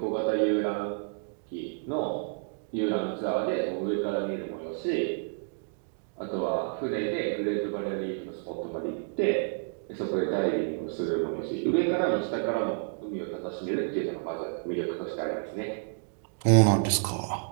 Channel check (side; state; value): left; silent; digital silence